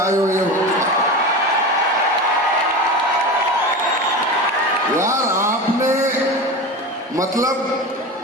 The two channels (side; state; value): both; normal; correlation 0.27